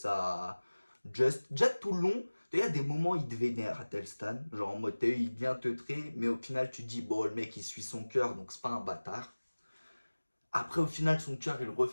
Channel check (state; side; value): inverted; both; correlation -1.00